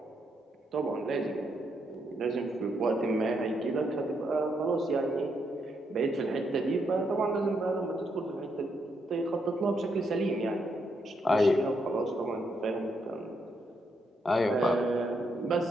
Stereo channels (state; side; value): normal; both; correlation 0.78